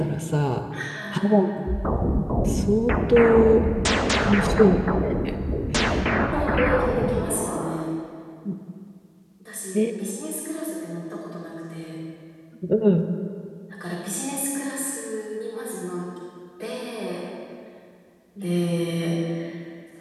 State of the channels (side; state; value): both; identical; correlation 1.00